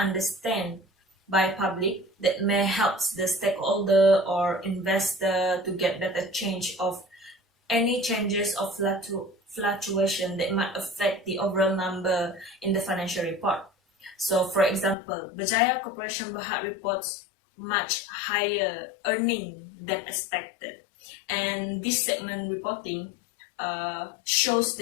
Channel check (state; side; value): drops out; right; at 15.0 s